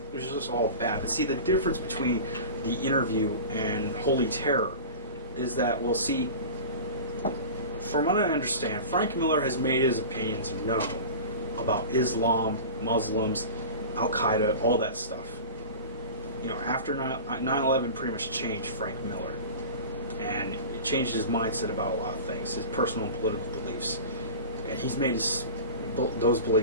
it was just all bad. But see, the difference between the interview and Holy Terror is that, well, see, from what I understand, Frank Miller has made his opinions known about Islam, Muslims, Al-Qaeda, all that stuff. After 9/11 pretty much changed Frank Miller. And it changed his mindset about a lot of things, his personal and political beliefs. And he's made those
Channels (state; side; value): inverted; both; correlation -0.34